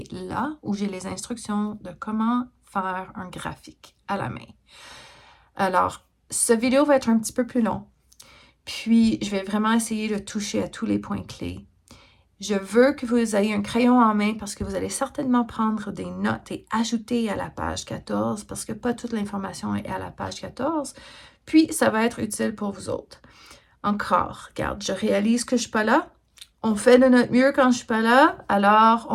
là où j'ai les instructions de comment faire un graphique à la main. Alors, cette vidéo va être un petit peu plus long. Puis, je vais vraiment essayer de toucher à tous les points clés. Je veux que vous ayez un crayon en main parce que vous allez certainement prendre des notes et ajouter à la page 14 parce que pas toute l'information est à la page 14. Puis, ça va être utile pour vous autres. Encore, regarde, je réalise que je ne suis pas là. On fait de notre mieux quand je ne suis pas là. Alors,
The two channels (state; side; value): identical; both; correlation 1.00